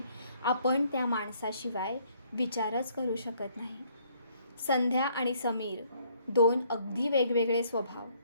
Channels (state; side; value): inverted; both; correlation -0.65